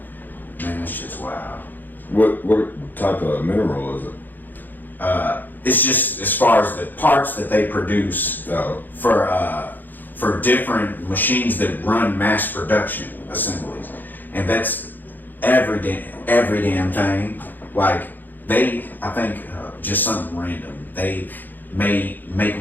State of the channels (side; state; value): right; late; 0.087 ms